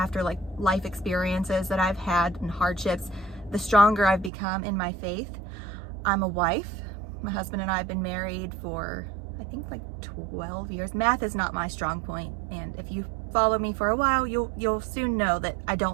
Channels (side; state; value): left; drops out; at 4.3 s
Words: like life experiences that I've had and hardships, the stronger I've become in my faith. I'm a wife. My husband and I have been married for, I think, like 12 years. Math is not my strong point, and if you follow me for a while, you'll soon know that I